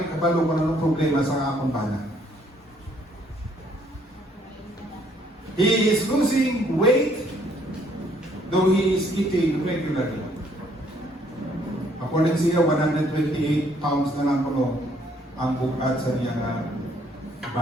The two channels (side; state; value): both; normal; correlation 0.65